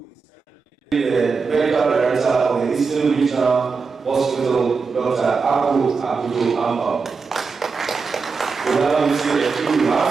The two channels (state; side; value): quieter; left; 4.9 dB